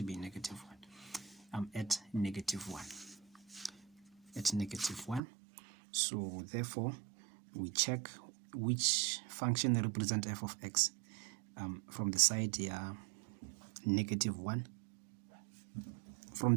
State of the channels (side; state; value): left; drops out; at 5.2 s